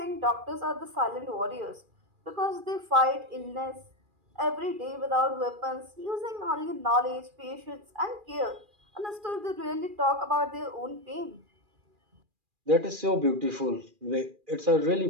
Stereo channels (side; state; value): left; late; 2.4 ms